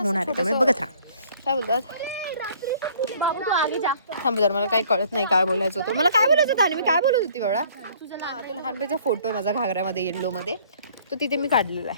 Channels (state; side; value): inverted; both; correlation -0.57